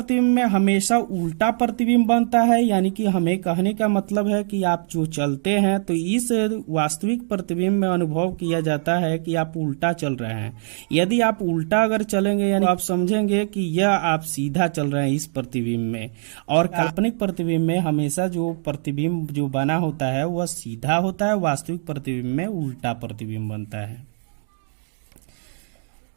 में हमेशा उल्टा प्रतिबिंब बनता है, यानी कि हमें कहने का मतलब है कि आप जो चलते हैं तो इस वास्तविक प्रतिबिंब में अनुभव किया जाता है कि आप उल्टा चल रहे हैं। यदि आप उल्टा अगर चलेंगे यानी आप समझेंगे कि यह आप सीधा चल रहे हैं इस प्रतिबिंब में। और काल्पनिक प्रतिबिंब में हमेशा जो प्रतिबिंब जो बना होता है वह सीधा होता है, वास्तविक प्रतिबिंब में उल्टा प्रतिबिंब बनता है।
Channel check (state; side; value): silent; left; digital silence